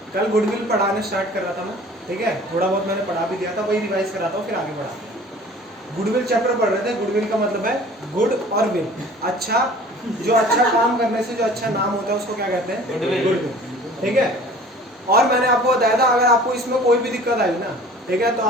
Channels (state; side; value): normal; both; correlation 0.46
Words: कल गुडविल पढ़ाने स्टार्ट कर रहा था मैं, ठीक है, थोड़ा बहुत मैंने पढ़ा भी दिया था, वही रिवाइज कर रहा था, फिर आगे बढ़ा। गुडविल चैप्टर पढ़ रहे थे। गुडविल का मतलब है गुड और विल, अच्छा, जो अच्छा काम करने से जो अच्छा नाम होता है उसको क्या कहते हैं? गुडविल, ठीक है। और मैंने आपको बताया था अगर आपको इसमें कोई भी दिक्कत आई ना, ठीक है, तो